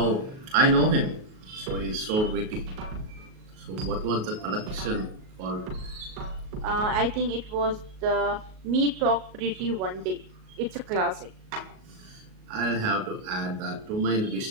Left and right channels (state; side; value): late; left; 38 ms